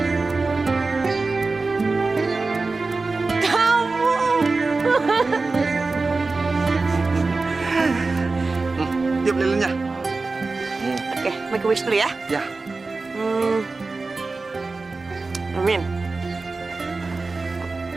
Tiup lilinnya. Oke, make a wish dulu ya. Ya. Amin.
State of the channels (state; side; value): quieter; left; 3.7 dB